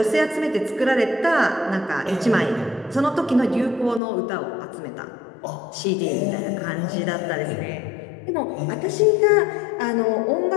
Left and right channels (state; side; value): drops out; right; at 4.0 s